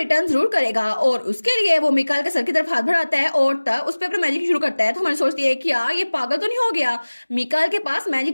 जरूर करेगा, और उसके लिए वो मिकाइल के सर की तरफ हाथ बढ़ाता है और तब उस पर अपना मैजिक शुरू करता है। तो हमारी सोचती है कि यार ये पागल तो नहीं हो गया, मिकाइल के पास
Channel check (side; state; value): both; inverted; correlation -1.00